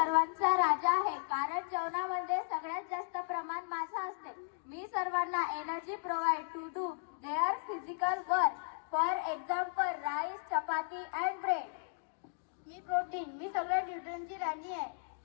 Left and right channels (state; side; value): silent; right; digital silence